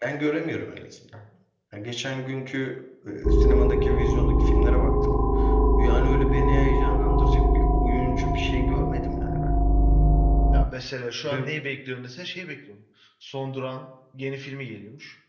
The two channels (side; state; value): both; identical; correlation 1.00